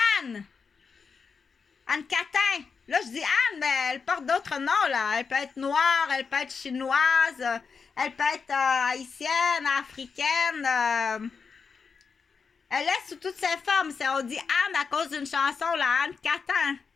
Catin. Là, je dis Anne, mais elle porte d'autres noms, là. Elle peut être noire, elle peut être chinoise, elle peut être haïtienne, africaine. Elle est sous toutes ses formes. On dit Anne à cause d'une chanson, là, Anne Catin.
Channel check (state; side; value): quieter; right; 5.5 dB